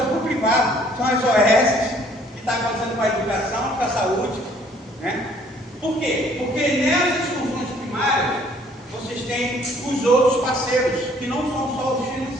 privado. São as OS que estão acontecendo com a educação, com a saúde. Né? Por quê? Porque nessas funções primárias, vocês têm os outros parceiros, que não são só os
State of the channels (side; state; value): both; normal; correlation 0.60